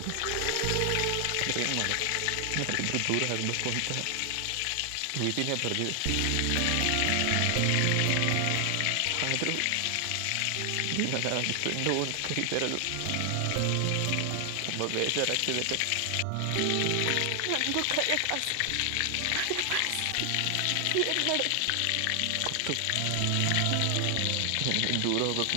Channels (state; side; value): different; both; correlation 0.00